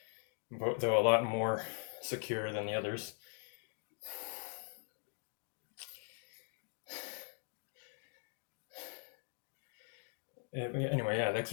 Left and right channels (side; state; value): right; silent; 50 dB below the other